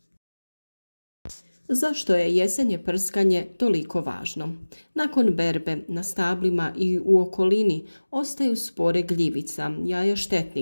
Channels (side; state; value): both; inverted; correlation -1.00